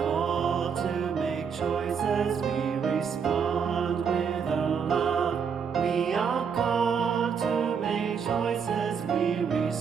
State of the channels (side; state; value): left; quieter; 6.7 dB